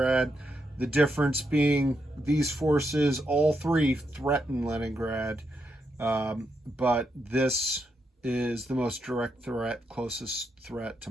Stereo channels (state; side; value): normal; both; correlation 0.82